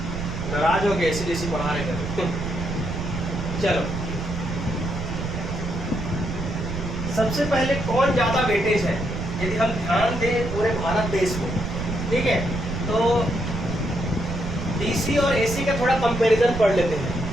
नाराज हो गए ऐसी बढ़ा रहे कर। चलो, सबसे पहले कौन ज्यादा वेटेज है, यदि हम ध्यान दें पूरे भारत देश में, ठीक है, तो डीसी और एसी का थोड़ा कंपैरिजन पढ़ लेते हैं।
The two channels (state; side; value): noise; right; rumble, 5 dB below the sound